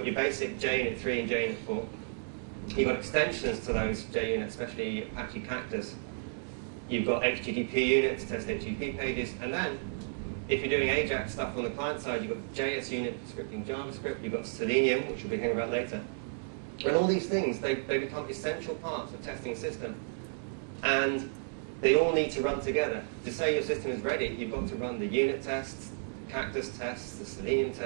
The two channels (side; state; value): left; silent; digital silence